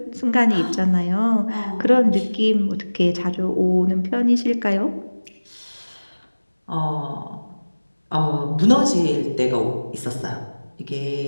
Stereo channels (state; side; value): inverted; both; correlation -1.00